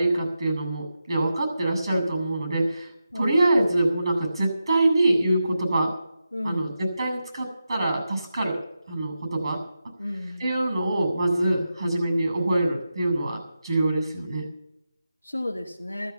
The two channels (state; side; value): inverted; both; correlation -0.89